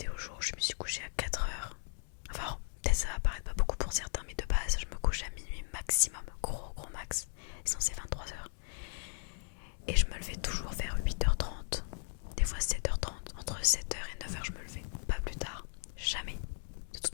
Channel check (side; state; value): right; silent; digital silence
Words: jours où je me suis couchée à 4 heures. Enfin, peut-être ça va paraître pas beaucoup pour certains, mais de base je me couche à minuit maximum, gros max, sinon c'est 23 heures. Et je me levais toujours vers 8h30, des fois 7h30, entre 7h et 9h je me levais, pas plus tard, jamais, de